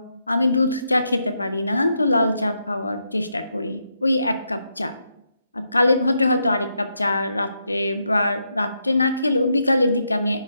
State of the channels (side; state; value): both; inverted; correlation -0.81